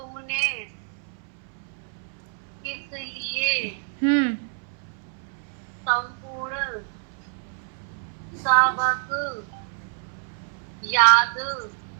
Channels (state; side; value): silent; left; 60 dB below the other